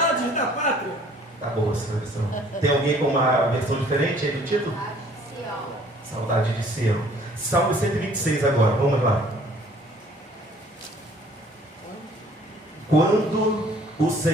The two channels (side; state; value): both; normal; correlation 0.56